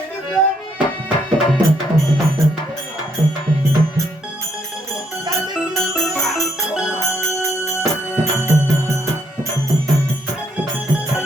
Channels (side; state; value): both; normal; correlation 0.74